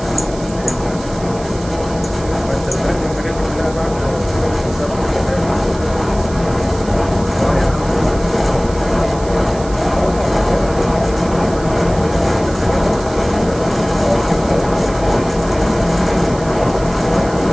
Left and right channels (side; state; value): right; noise; hiss, 18 dB below the sound